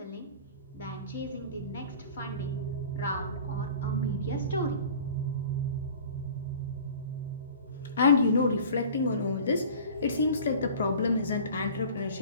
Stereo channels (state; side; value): inverted; both; correlation -0.42